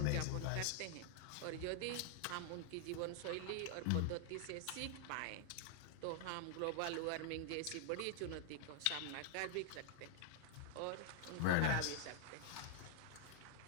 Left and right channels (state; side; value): different; both; correlation 0.00